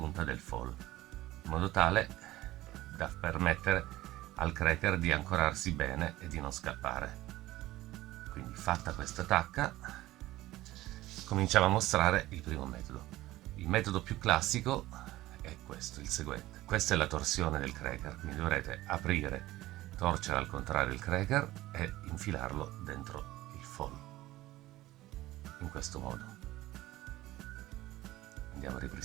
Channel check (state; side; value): quieter; left; 16.7 dB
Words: del fall, in modo tale da permettere al cracker di ancorarsi bene e di non scappare. Quindi fatta questa tacca cominciamo a mostrare il primo metodo. Il metodo più classico è questo, il seguente. Questa è la torsione del cracker, quindi dovrete aprire, torcere al contrario il cracker e infilarlo dentro il fall, in questo modo. Andiamo a